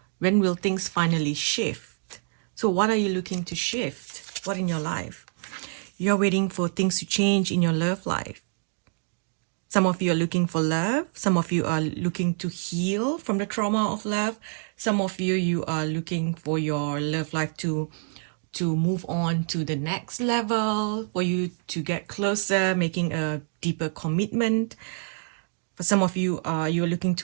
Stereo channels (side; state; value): left; silent; 57 dB below the other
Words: When will things finally shift? So what are you looking to shift? What in your life? You're waiting for things to change in your love life. Some of you are looking for love. Some of you are looking to heal from the trauma of love. Some of you are looking for your love life to move on to the next level, for you to get closer, making a deeper commitment. For some of you, you're looking